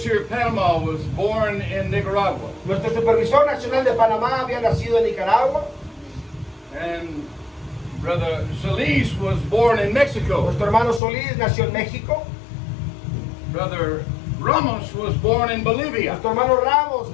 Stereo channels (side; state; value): right; drops out; at 11.0 s